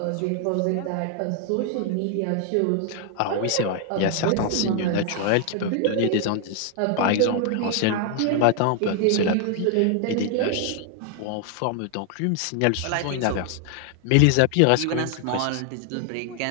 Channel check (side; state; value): both; different; correlation 0.00